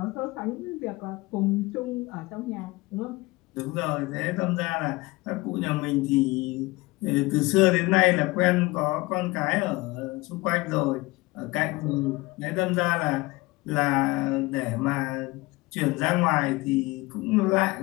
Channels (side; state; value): right; quieter; 21.8 dB